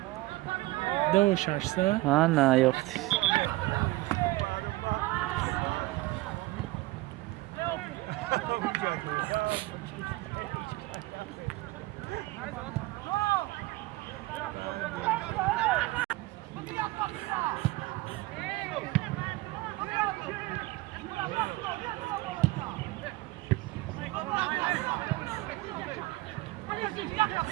Dove şarsa? Ha na yoktu.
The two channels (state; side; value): quieter; left; 20.0 dB